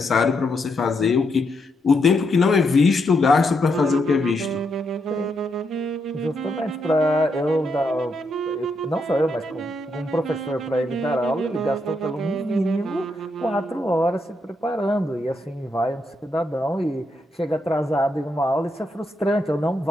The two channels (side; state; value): both; normal; correlation 0.80